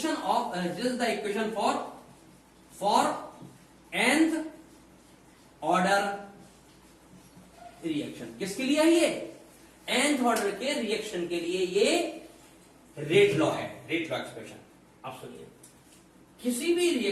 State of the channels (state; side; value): identical; both; correlation 1.00